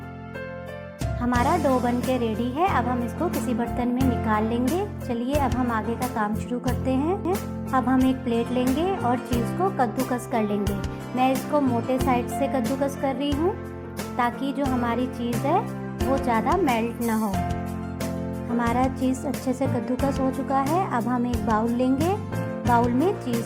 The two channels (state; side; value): identical; both; correlation 1.00